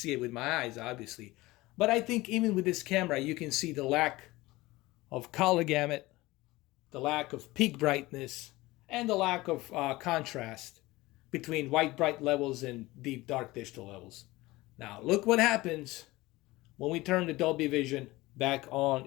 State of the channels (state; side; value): quieter; right; 19.8 dB